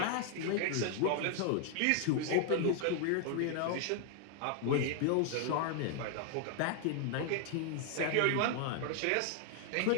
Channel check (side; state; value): both; different; correlation 0.00